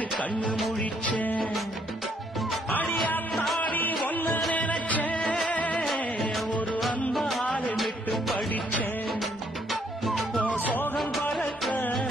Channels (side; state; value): both; normal; correlation 0.69